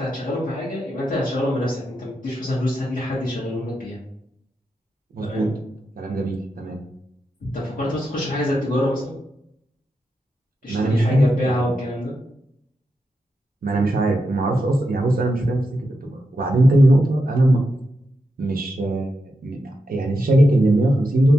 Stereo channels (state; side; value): normal; both; correlation 0.86